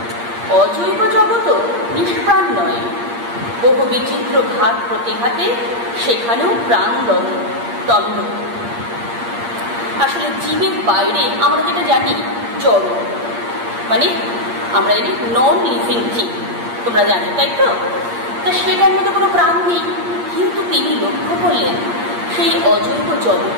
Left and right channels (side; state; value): left; late; 8.6 ms